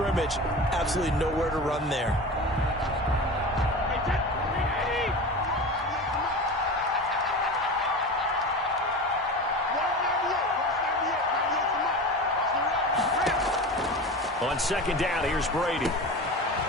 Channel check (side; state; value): both; normal; correlation 0.30